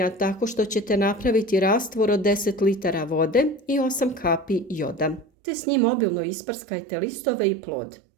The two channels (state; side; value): drops out; left; at 5.2 s